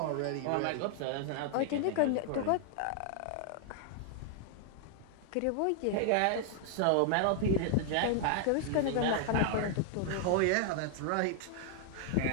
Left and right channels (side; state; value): both; different; correlation 0.00